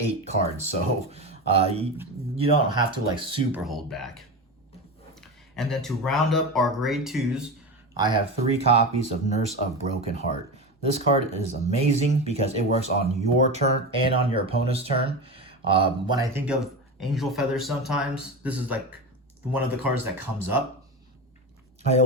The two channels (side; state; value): both; normal; correlation 0.22